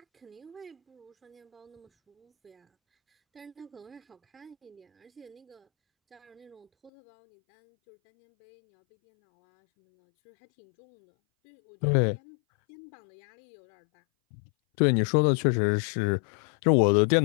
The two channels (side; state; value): right; drops out; at 6.9 s